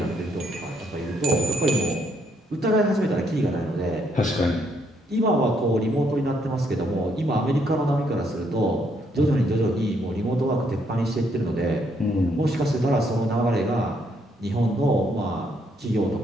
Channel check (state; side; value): normal; both; correlation 0.72